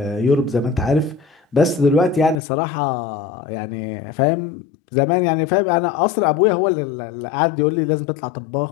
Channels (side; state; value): right; drops out; at 2.4 s